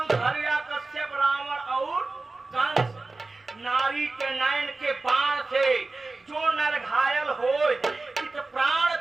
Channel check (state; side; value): quieter; left; 3.5 dB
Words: हरिया कश्यप रावण और कंस। नारी के नयन के बाण से जो नर घायल हो इत प्राण